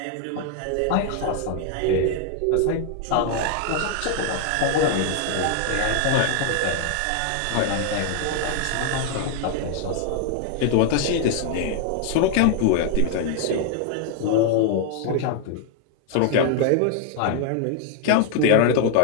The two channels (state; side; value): different; both; correlation 0.00